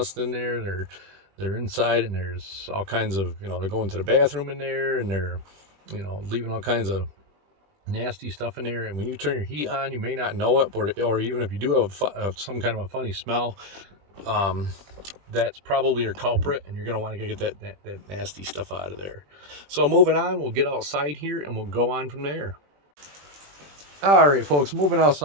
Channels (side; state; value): left; late; 20 ms